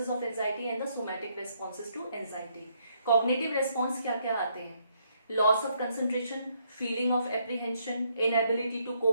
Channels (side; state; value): both; inverted; correlation -0.72